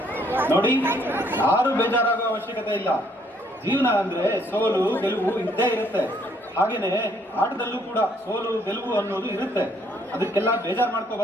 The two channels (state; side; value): normal; both; correlation 0.67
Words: ನೋಡಿ, ಯಾರು ಬೇಜಾರಾಗೋ ಅವಶ್ಯಕತೆ ಇಲ್ಲ. ಜೀವನ ಅಂದ್ರೆ ಸೋಲು ಗೆಲುವು ಇದ್ದೇ ಇರುತ್ತೆ. ಹಾಗೇನೆ ಆಟದಲ್ಲೂ ಕೂಡ ಸೋಲು ಗೆಲುವು ಅನ್ನೋದು ಇರುತ್ತೆ. ಅದಕ್ಕೆಲ್ಲ ಬೇಜಾರು